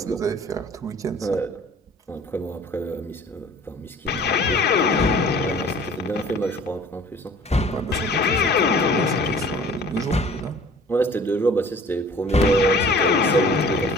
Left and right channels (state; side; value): normal; both; correlation 0.49